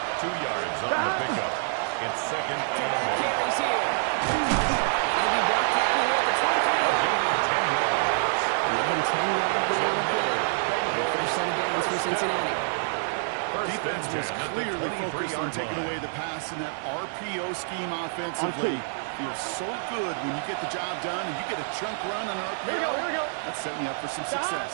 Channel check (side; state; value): left; silent; 60 dB below the other